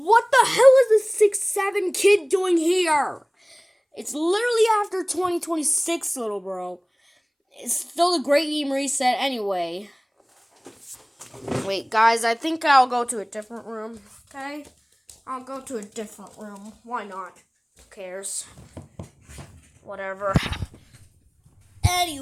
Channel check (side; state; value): both; identical; correlation 1.00